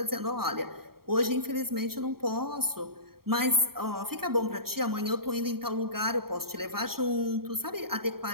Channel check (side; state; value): left; late; 0.94 ms